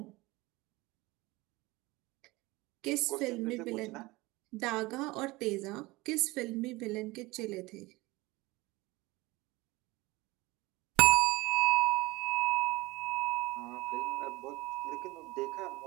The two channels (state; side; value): quieter; left; 21.4 dB